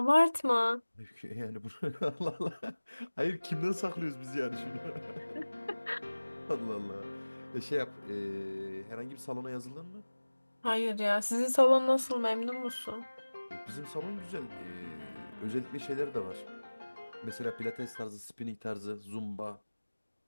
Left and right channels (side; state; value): both; inverted; correlation -1.00